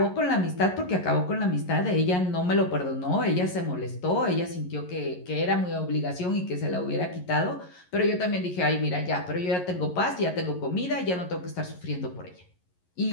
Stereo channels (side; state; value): right; late; 11 ms